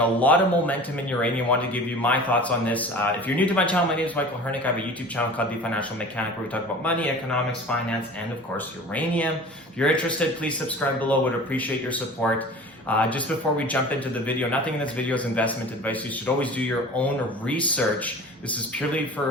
lot of momentum in uranium. I want to give you my thoughts on this. If you're new to my channel, my name is Michael Hernik. I have a YouTube channel called The Financial Mechanic where we talk about money, economics, finance, and of course uranium. If you're interested, please subscribe below. Would appreciate your support. Just before we jump into the video, nothing in this video is investment advice. You should always do your own research. This is purely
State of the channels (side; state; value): both; normal; correlation 0.40